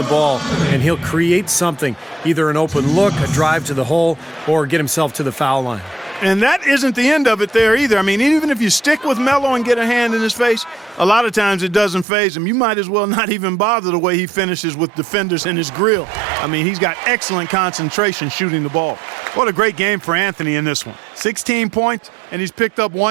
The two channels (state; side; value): drops out; left; at 12.1 s